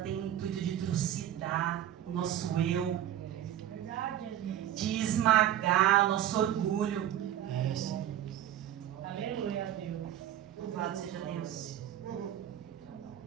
o intuito de trucidar o nosso eu, Verdade, Jesus. de esmagar o nosso orgulho. É, sim. Aleluia a Deus. Louvado seja Deus.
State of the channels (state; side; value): quieter; left; 11.7 dB